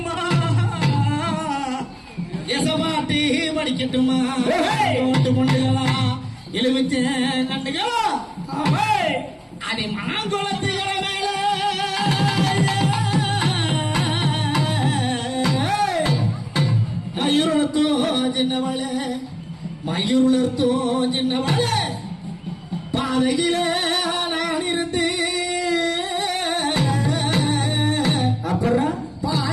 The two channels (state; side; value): identical; both; correlation 1.00